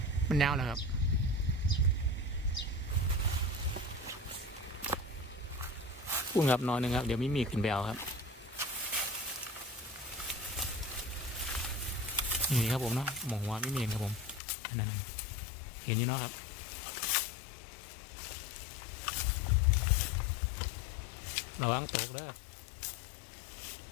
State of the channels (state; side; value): drops out; right; at 14.4 s